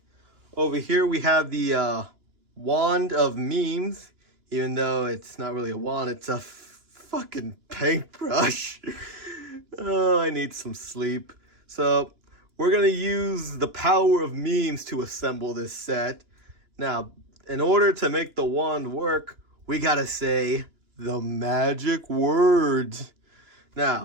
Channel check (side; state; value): left; late; 2.9 ms